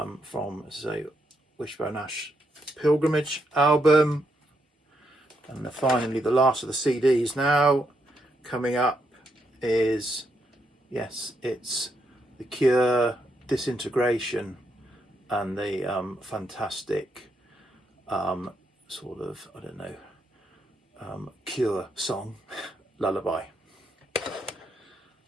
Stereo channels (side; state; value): both; normal; correlation 0.79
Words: from, say, Wishbone Ash Pilgrimage album. And finally, the last of the CDs now coming up is, yes, it's The Cure, Disintegration, and the fantastic sort of, I don't know, Cure song, Lullaby.